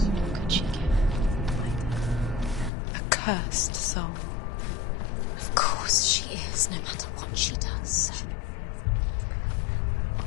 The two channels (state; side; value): drops out; right; at 2.7 s